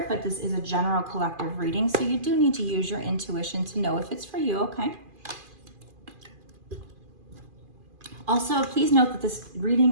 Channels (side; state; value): left; late; 2.4 ms